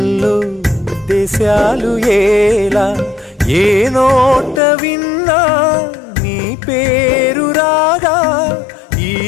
దేశాలు ఏలా. ఏ నోట విన్నా నీ పేరు రాగా, ఈ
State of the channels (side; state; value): right; drops out; at 4.6 s